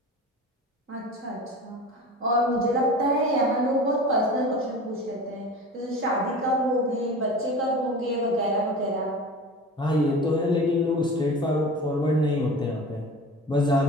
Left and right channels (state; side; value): normal; both; correlation 0.35